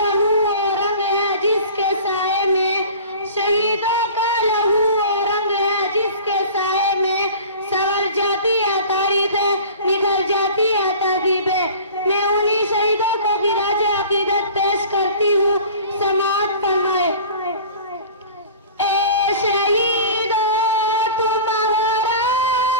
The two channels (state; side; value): inverted; both; correlation -0.41